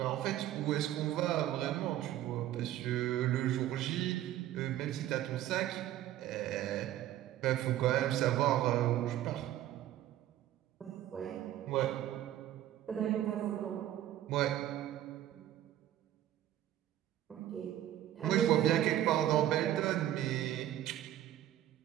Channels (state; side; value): quieter; left; 12.8 dB